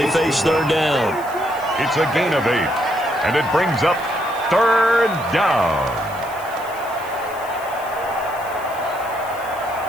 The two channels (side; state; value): left; noise; hiss, 20 dB below the sound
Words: face third down. It's a gain of 8, and it brings up third down.